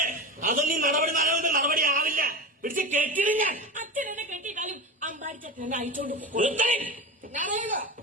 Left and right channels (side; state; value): both; normal; correlation 0.24